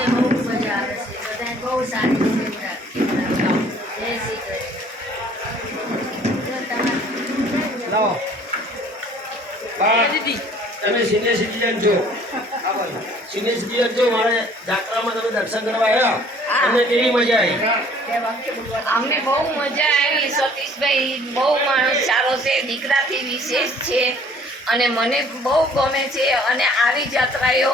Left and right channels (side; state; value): both; normal; correlation 0.55